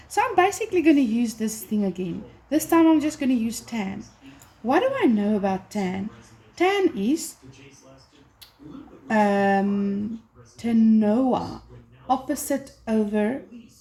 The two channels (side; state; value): both; identical; correlation 1.00